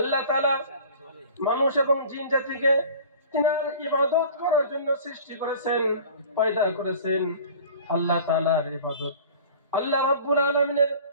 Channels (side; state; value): both; inverted; correlation -0.44